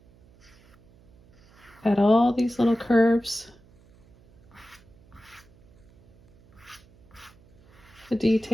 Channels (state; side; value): noise; right; hum, 28 dB below the sound